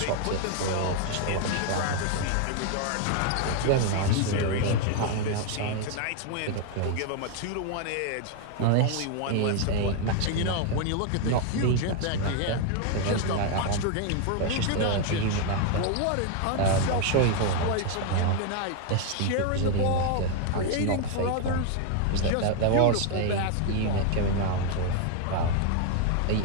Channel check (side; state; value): both; different; correlation 0.01